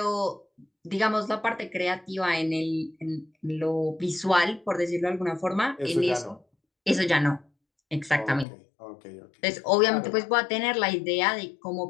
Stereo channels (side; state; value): right; drops out; at 8.5 s